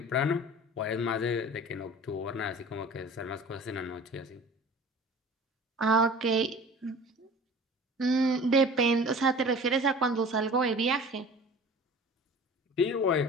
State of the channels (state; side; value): normal; both; correlation 0.42